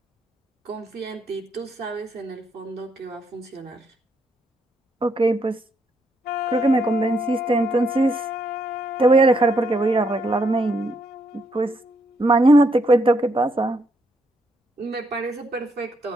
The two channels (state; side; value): normal; both; correlation 0.75